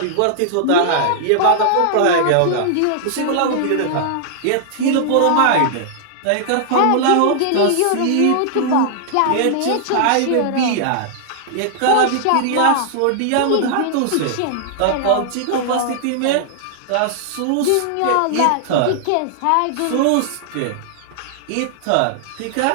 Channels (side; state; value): both; different; correlation -0.01